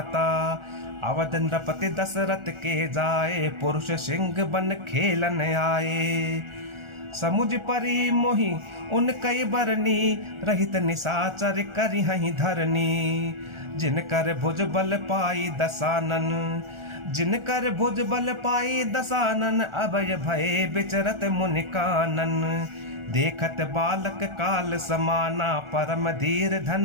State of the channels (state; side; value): late; left; 1.4 ms